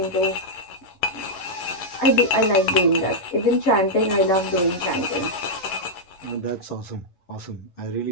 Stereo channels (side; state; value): right; late; 11 ms